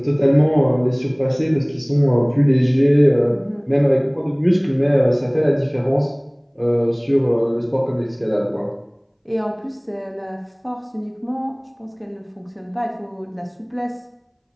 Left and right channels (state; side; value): identical; both; correlation 1.00